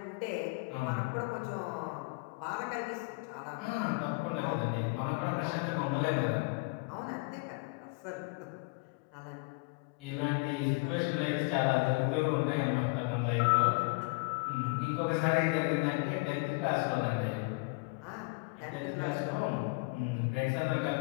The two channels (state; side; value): quieter; right; 28.7 dB